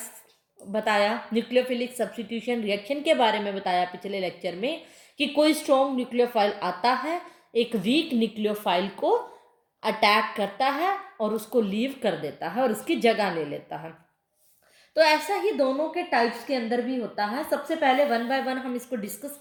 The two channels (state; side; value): identical; both; correlation 1.00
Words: बताया, न्यूक्लियोफिलिक सब्स्टिट्यूशन रिएक्शन के बारे में बताया पिछले लेक्चर में कि कोई स्ट्रॉन्ग न्यूक्लियोफाइल आता है, एक वीक न्यूक्लियोफाइल को अटैक करता है और उसको लीव कर देता है और उसकी जगह ले लेता है. तो ऐसा ही दोनों के टाइप्स के अंदर भी होता है. सबसे पहले वन बाय वन हम इसको डिस्कस